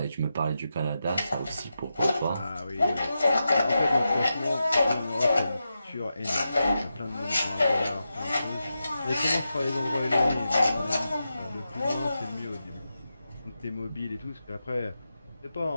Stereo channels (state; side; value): inverted; both; correlation -0.89